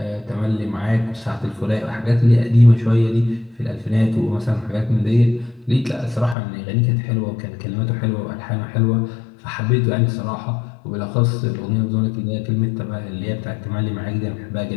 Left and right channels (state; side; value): drops out; right; at 6.4 s